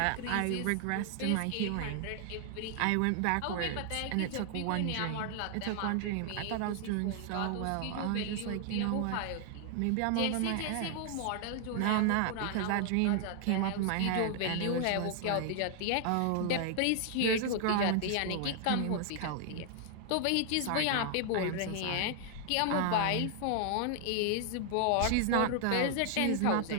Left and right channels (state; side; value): different; both; correlation 0.00